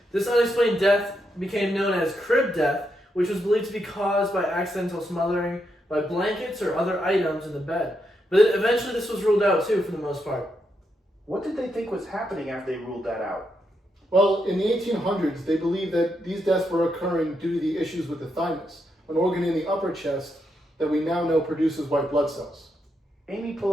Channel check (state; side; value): normal; both; correlation 0.81